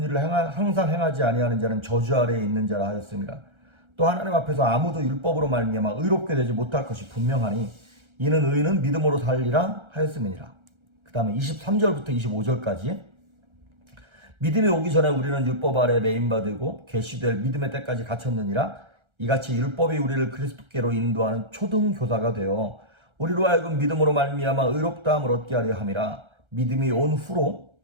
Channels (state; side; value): late; left; 1.3 ms